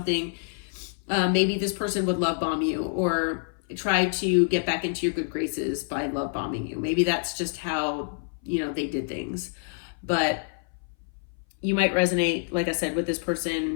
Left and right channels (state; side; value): silent; right; 59 dB below the other